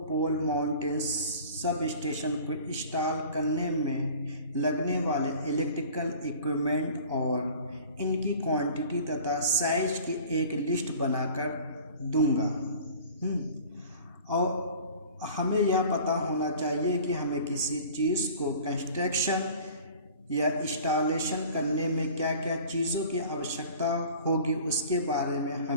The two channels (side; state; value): both; inverted; correlation -0.44